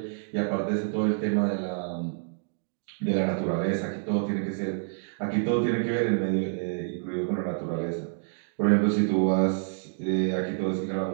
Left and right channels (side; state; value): left; silent; digital silence